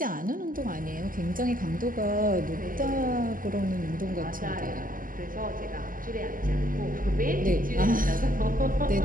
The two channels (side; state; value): left; late; 0.41 ms